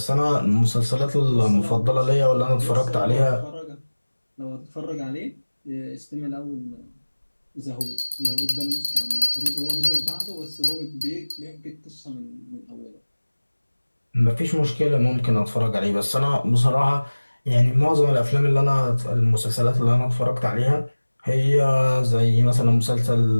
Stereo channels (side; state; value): both; inverted; correlation -1.00